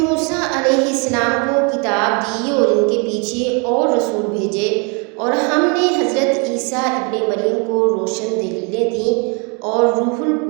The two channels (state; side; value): quieter; left; 33.8 dB